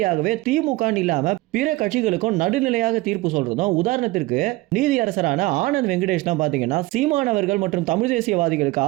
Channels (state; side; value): quieter; left; 20.3 dB